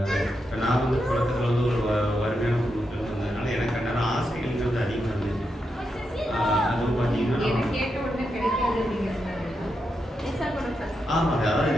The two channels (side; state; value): both; normal; correlation 0.85